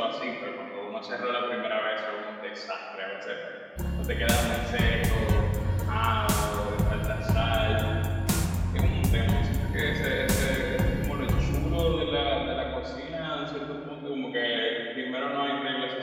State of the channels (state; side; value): identical; both; correlation 1.00